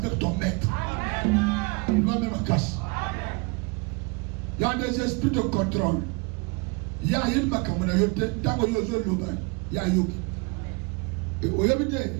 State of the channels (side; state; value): left; quieter; 29.2 dB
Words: ton maître. Il doit même casse. Il y a des esprits de contrôle. Il y a une macamayote, tant que yozo loba, il y a yogi. Et au yabite.